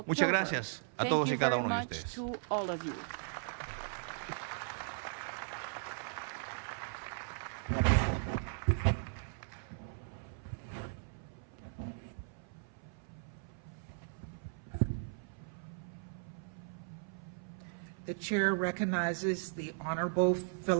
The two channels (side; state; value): left; silent; 53 dB below the other